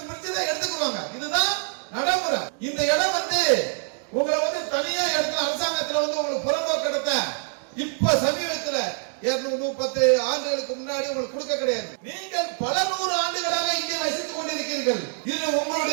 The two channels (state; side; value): silent; left; 62 dB below the other